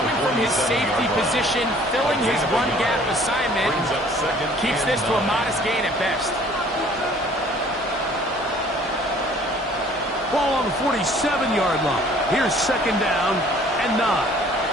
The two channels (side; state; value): both; normal; correlation 0.54